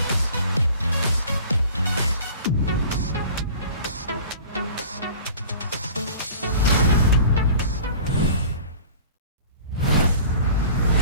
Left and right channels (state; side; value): inverted; both; correlation -0.44